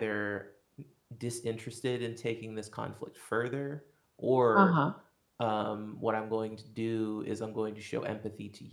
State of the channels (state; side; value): identical; both; correlation 1.00